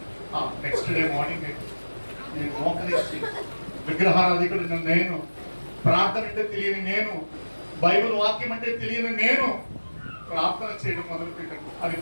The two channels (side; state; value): both; inverted; correlation -1.00